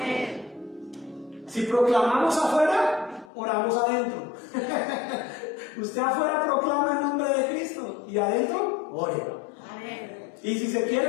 Si proclamamos afuera, oramos adentro. Usted afuera proclama el nombre de Cristo y adentro, ore. Amén. Y si se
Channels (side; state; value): right; drops out; at 3.3 s